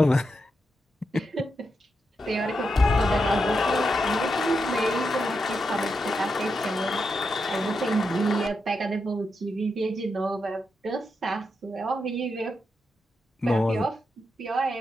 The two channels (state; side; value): normal; both; correlation 0.85